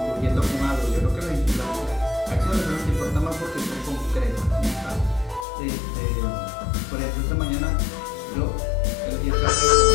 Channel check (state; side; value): drops out; right; at 5.5 s